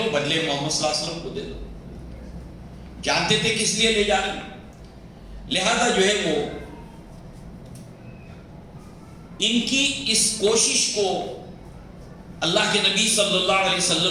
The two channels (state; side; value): identical; both; correlation 1.00